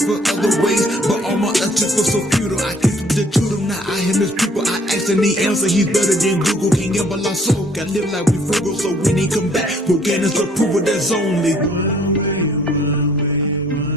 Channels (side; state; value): both; normal; correlation 0.60